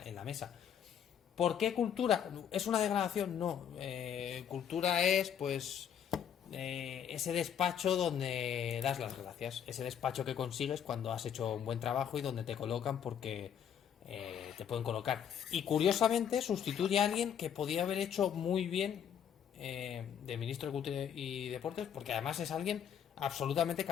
la mesa. ¿Por qué cultura? ¿Es una degradación? No. Cultura es, pues, ese despacho donde das las gracias. Ese despacho que consigues cuando has hecho un buen trabajo y donde te colocan porque te pueden colocar. Y curiosamente sustituye a alguien que podía haber hecho muy bien de ministro de Cultura y Deportes, porque además es alguien absolutamente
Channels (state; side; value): quieter; right; 8.7 dB